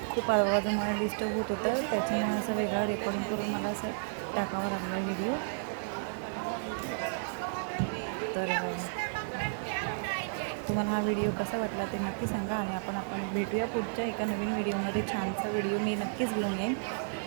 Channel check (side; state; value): left; silent; 56 dB below the other